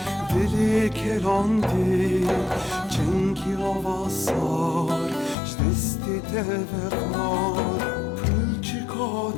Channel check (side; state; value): right; drops out; at 5.4 s